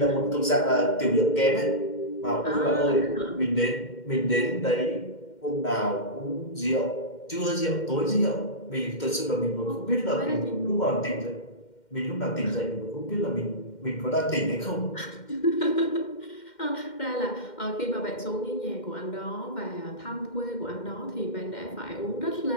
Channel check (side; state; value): right; late; 2.1 ms